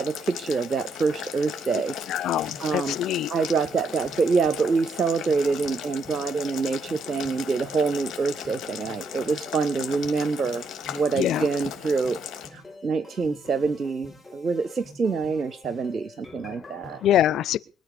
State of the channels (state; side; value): normal; both; correlation 0.73